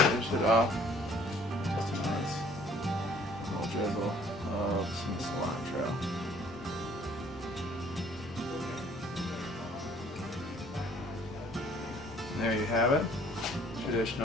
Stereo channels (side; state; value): both; normal; correlation 0.57